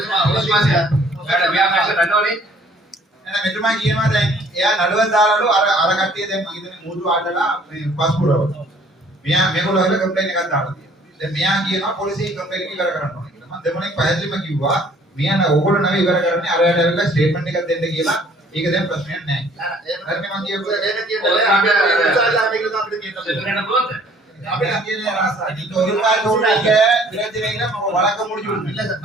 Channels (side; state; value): both; normal; correlation 0.57